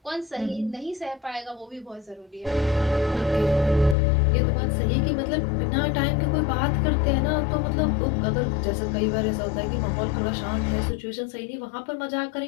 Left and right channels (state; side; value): drops out; right; at 4.0 s